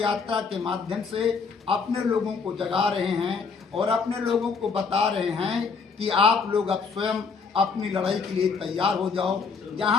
के माध्यम से अपने लोगों को जगा रहे हैं और अपने लोगों को बता रहे हैं कि आप लोग अब स्वयं अपनी लड़ाई के लिए तैयार हो जाओ।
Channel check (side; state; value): right; quieter; 5.1 dB